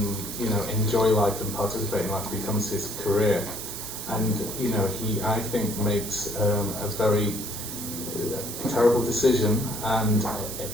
you know, enjoy life and participate in life becomes his career. And, you know, he, I think, makes a very terrible decision, and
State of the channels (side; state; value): right; noise; hiss, 7 dB below the sound